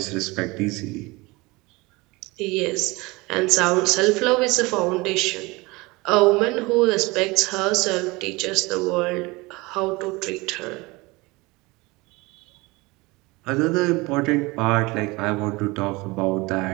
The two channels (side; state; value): left; quieter; 23.5 dB